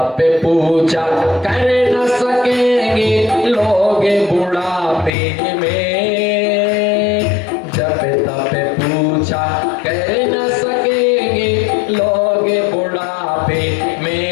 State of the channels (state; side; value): drops out; right; at 5.1 s